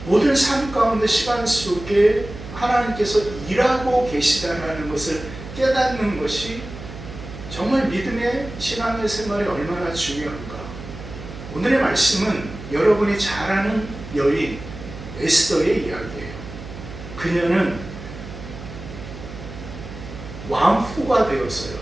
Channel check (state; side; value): noise; right; hum, 12 dB below the sound